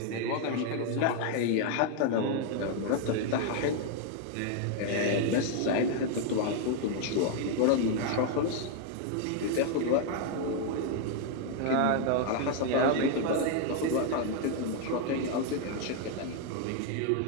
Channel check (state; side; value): different; both; correlation 0.00